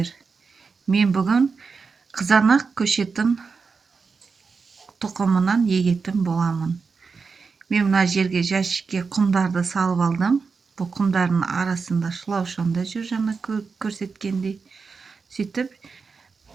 Мен бүгін қызанақ көшетін тұқымынан егетін боламын. Мен мына жерге жәшікке құмдарды салып алдым. Бұл құмдардың арасында шылаушанда жүр, жаңа көрсеткендей. Сөйтіп,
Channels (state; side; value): quieter; left; 4.9 dB